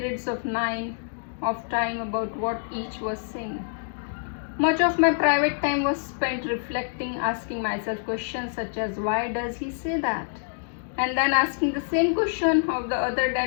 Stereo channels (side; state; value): right; silent; digital silence